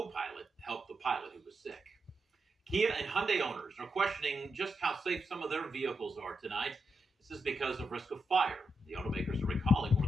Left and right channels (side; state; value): both; normal; correlation 0.85